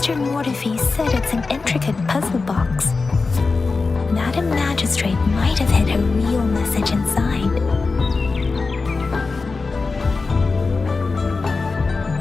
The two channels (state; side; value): quieter; right; 4.1 dB